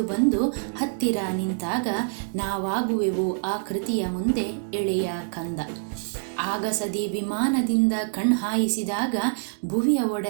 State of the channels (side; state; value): left; silent; digital silence